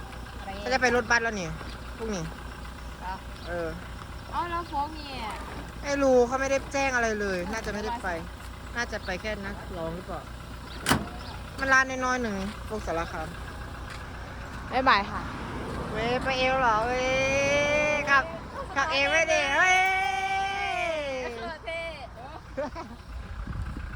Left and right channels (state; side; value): identical; both; correlation 1.00